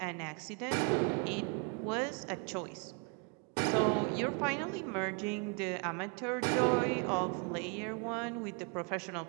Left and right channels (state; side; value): quieter; left; 34.3 dB